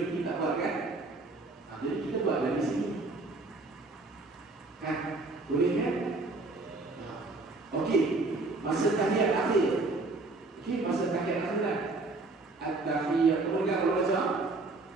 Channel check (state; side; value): quieter; left; 3.3 dB